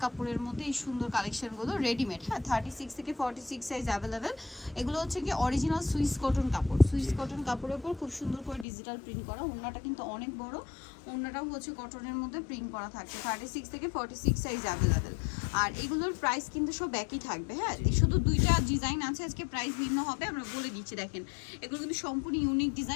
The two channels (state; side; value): drops out; right; at 8.7 s